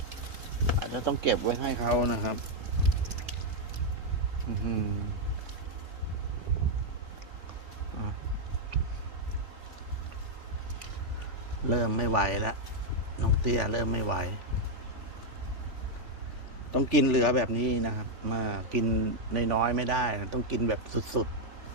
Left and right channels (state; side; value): late; left; 3.4 ms